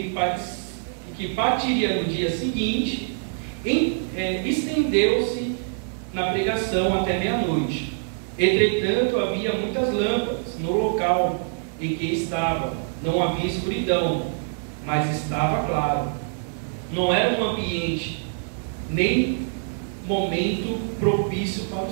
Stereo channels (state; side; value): silent; left; 62 dB below the other